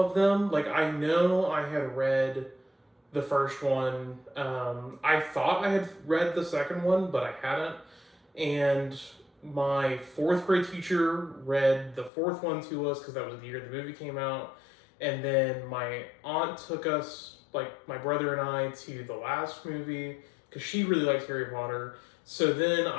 them. Like, I know I had read the first one. I thought I had read the second one, but I hadn't. And my fourth grade teacher read the fourth one to us because that was the year the movie came out. And then my aunt took us, like my brother and I, to the last movie because she really liked Harry Potter. So then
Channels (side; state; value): right; drops out; at 12.1 s